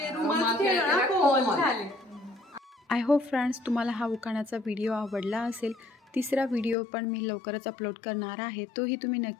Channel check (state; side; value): drops out; right; at 6.8 s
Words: रुमाल खेळलो ना, कोल झाले. आय होप फ्रेंड्स तुम्हाला हा उखाण्याचा व्हिडिओ आवडला असेल. तिसरा व्हिडिओ पण मी लवकरच अपलोड करणार आहे, तोही तुम्ही